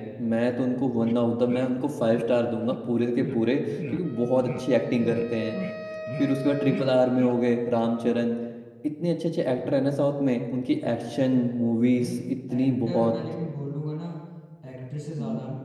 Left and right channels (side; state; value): both; identical; correlation 1.00